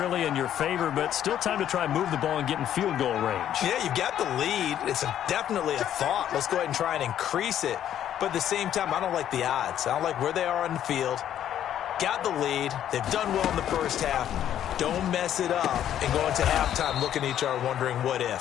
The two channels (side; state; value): right; quieter; 10.7 dB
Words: in your favor, but still time to try and move the ball and get in field goal range. Yeah, you've got the lead. It's definitely a thought. Let's go ahead and try and increase it. But at the same time, I don't like the odds. I don't like where they are on the field. Got the lead. They've done well in the first half. Don't mess it up and go into halftime looking at each other wondering what